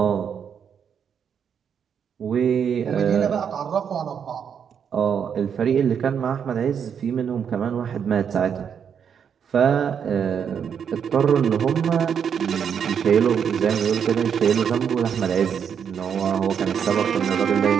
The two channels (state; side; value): quieter; left; 7.6 dB